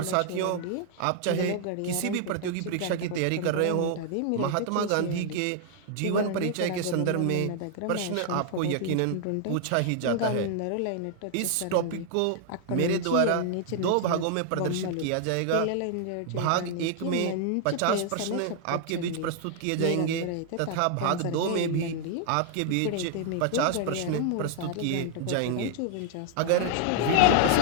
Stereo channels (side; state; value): both; different; correlation 0.00